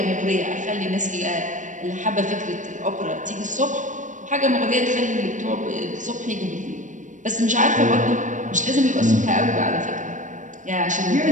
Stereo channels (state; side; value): late; left; 0.37 ms